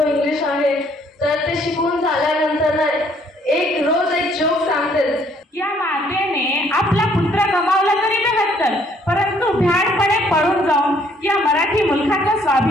इंग्लिश आहे तर ते शिकवून झाल्यानंतर रोज एक जोक सांगतात। या मातेने आपला पुत्र गमावला तरी नव्हतं, परंतु भ्याडपणे पळून जाऊन या मराठी मुलखाचा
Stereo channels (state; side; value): normal; both; correlation 0.64